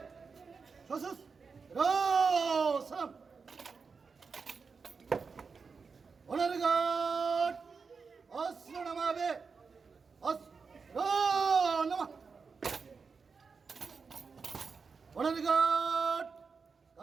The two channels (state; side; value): quieter; left; 5.1 dB